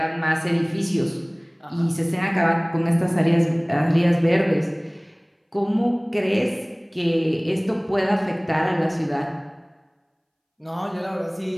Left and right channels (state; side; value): identical; both; correlation 1.00